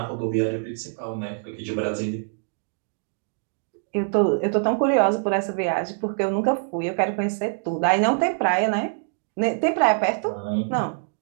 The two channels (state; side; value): silent; left; digital silence